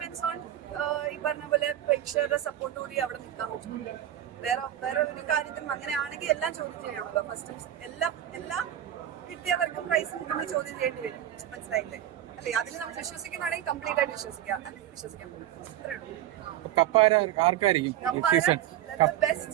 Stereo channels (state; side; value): quieter; left; 11.7 dB